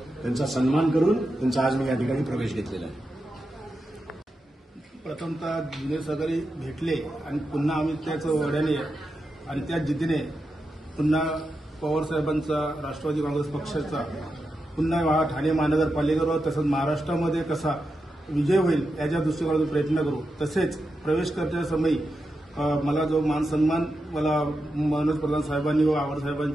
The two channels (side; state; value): both; normal; correlation 0.88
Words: त्यांचा सन्मान करून त्यांचा आज मी या ठिकाणी प्रवेश घेतलेला आहे. प्रथमतः जुने सहकारी भेटले आणि पुन्हा आम्ही त्याच वड्याने आणि त्या जिद्दीने पुन्हा पवारसाहेबांचा राष्ट्रवादी काँग्रेस पक्षाचा पुन्हा ठाणे महानगरपालिकेवर तसंच महाराष्ट्रामध्ये कसा विजय होईल याच्या दृष्टिकोनातून प्रयत्न करू. तसेच प्रवेश करण्याच्या समयी मला जो मान सन्मान मला मनोज प्रधान साहेबांनी व आव्हाड